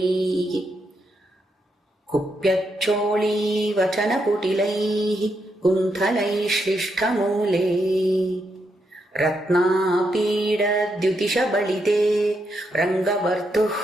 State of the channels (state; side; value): normal; both; correlation 0.81